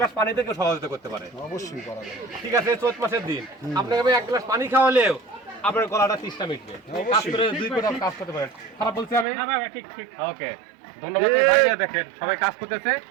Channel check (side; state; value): left; drops out; at 9.2 s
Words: পানি থেকে সহযোগিতা করতে পারে। অবশ্যই করা যাবে। ঠিক আছে, চৈত মাসের দিন আপনাকে আমি এক গ্লাস পানি খাওয়ালেও আপনার গলাটা তৃষ্ণা মিটবে। কাজ করে 2 ফুট কাজ করতে পারেন। খারাপ বলছি আমি? ঠিক ঠিক। ওকে, ধন্যবাদ ভাই। দেখেন সবাই কাজ করতেছে,